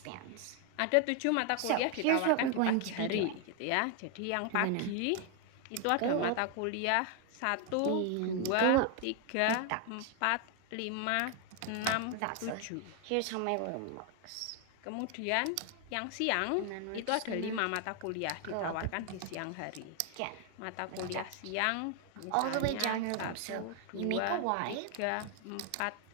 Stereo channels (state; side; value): different; both; correlation 0.01